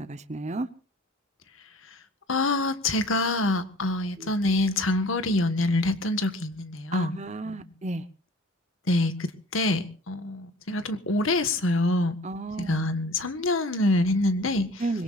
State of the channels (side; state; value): both; normal; correlation 0.47